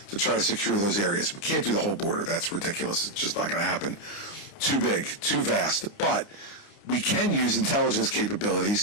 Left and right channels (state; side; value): late; right; 29 ms